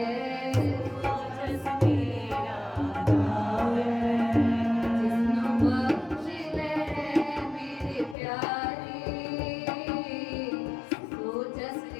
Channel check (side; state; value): right; drops out; at 8.2 s